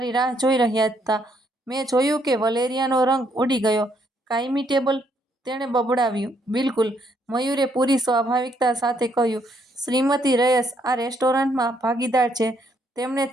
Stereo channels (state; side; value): normal; both; correlation 0.72